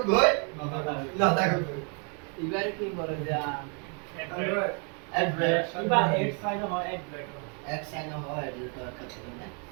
গই না তাকে গই এবার কি করে যা অ্যাড্রেস ইবা 8 ফাইল হয় অ্যাড্রেস এক সাইন হয় অ্যাড্রেস তো করতে না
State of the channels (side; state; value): left; quieter; 37.7 dB